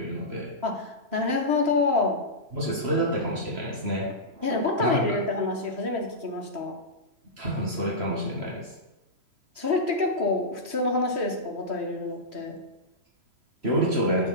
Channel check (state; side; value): late; left; 3.0 ms